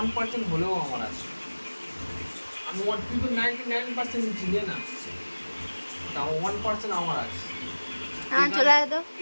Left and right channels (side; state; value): both; inverted; correlation -1.00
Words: হলেও আমার আছে। আমি 99% চিনি না, তাও 1% আমার আছে। হ্যাঁ চলে আয় তো।